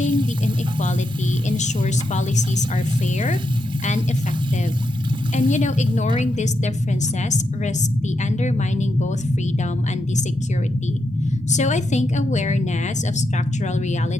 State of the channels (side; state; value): both; normal; correlation 0.83